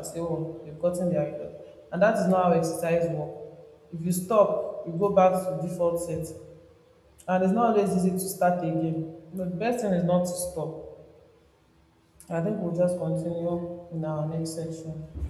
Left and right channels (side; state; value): both; identical; correlation 1.00